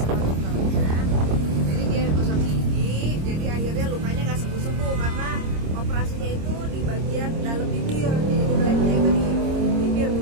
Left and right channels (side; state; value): left; late; 26 ms